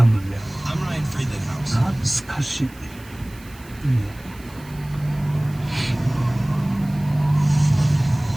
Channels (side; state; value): right; noise; hiss, 24 dB below the sound